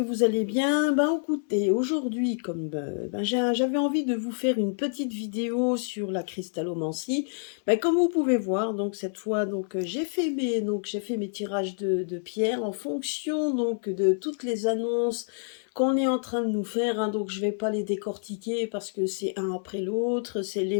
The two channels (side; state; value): right; silent; digital silence